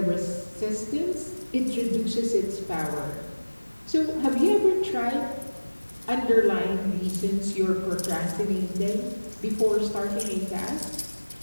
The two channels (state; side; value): inverted; both; correlation -1.00